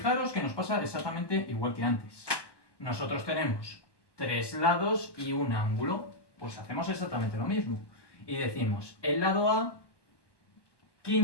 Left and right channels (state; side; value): late; right; 1.1 ms